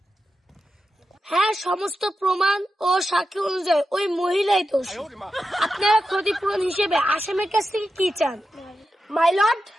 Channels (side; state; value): both; normal; correlation 0.89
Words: হ্যাঁ, সমস্ত প্রমাণ ও সাক্ষী অনুযায়ী ওই মহিলাই দোষী। আপনারা ক্ষতিপূরণ হিসেবে আসামের কাছ থেকে কি চান? মাই লর্ড,